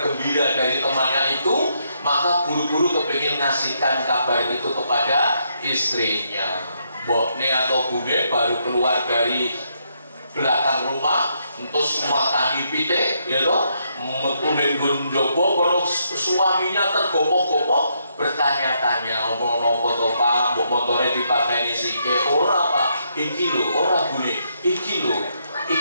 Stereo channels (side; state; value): both; inverted; correlation -0.76